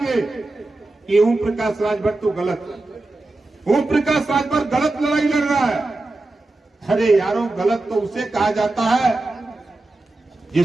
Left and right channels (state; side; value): quieter; left; 3.0 dB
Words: कि ओम प्रकाश राजभर तो गलत, ओम प्रकाश राजभर गलत लड़ाई लड़ रहा है। अरे यारों, गलत तो उसे कहा जाता है